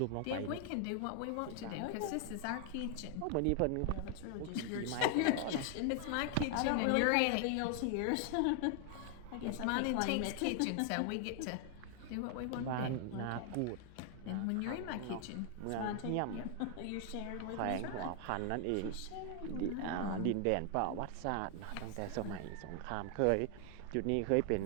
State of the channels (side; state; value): both; different; correlation 0.00